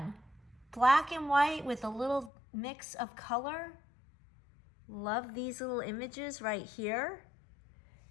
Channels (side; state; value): right; drops out; at 2.3 s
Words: Black and white with a little mix of color. Love these little images right here.